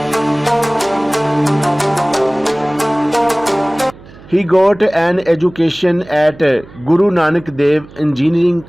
He got an education at Guru Nanak Dev Engineering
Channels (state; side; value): noise; right; hum, 21 dB below the sound